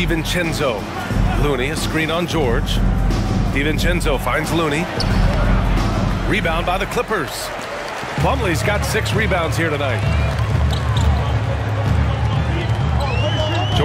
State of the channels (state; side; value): identical; both; correlation 1.00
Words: Looney, a screen on George. DiVincenzo finds Looney. Rebound by the Clippers. Plumlee's got 6 rebounds here tonight.